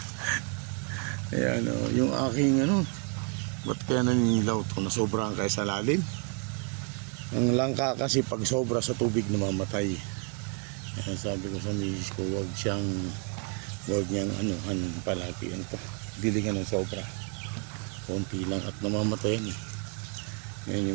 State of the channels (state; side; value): quieter; left; 34.7 dB